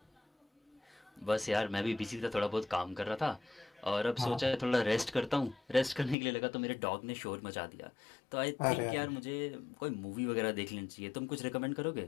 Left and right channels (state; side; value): drops out; right; at 6.2 s